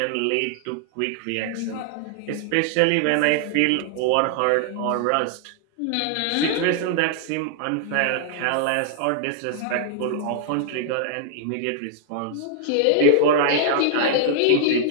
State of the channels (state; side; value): different; both; correlation 0.00